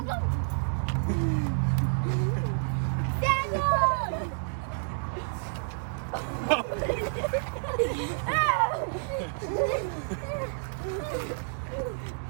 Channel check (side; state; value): left; silent; digital silence